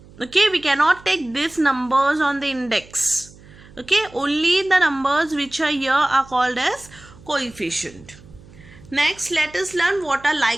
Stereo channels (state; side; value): noise; right; hum, 23 dB below the sound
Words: Okay, we cannot take these numbers on the index. Okay, only the numbers which are here are called as coefficient. Next, let us learn what are